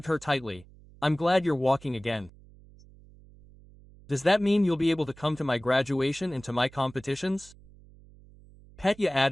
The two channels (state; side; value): noise; right; hum, 24 dB below the sound